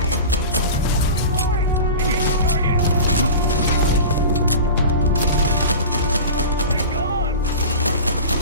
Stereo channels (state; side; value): inverted; both; correlation -0.32